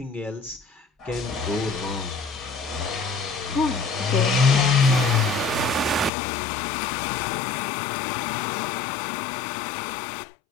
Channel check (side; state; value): right; drops out; at 6.1 s